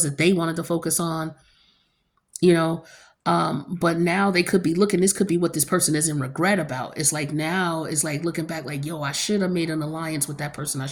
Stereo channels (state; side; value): identical; both; correlation 1.00